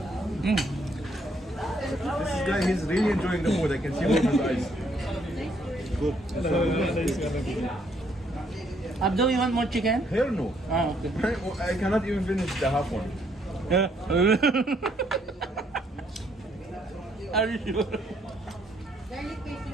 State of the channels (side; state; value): both; normal; correlation 0.70